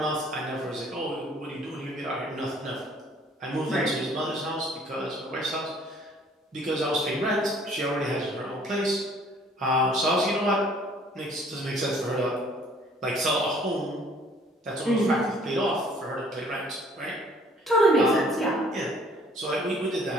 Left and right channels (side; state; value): both; normal; correlation 0.57